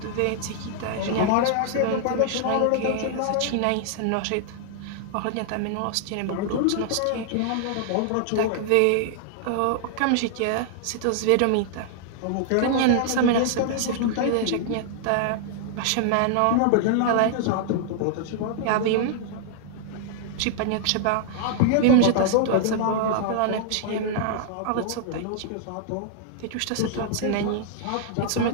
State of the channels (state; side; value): different; both; correlation -0.01